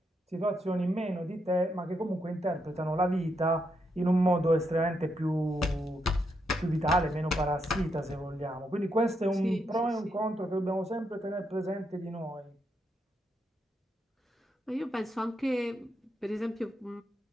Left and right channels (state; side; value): normal; both; correlation 0.80